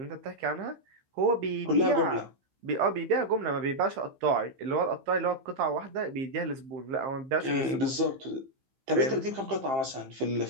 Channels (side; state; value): left; late; 15 ms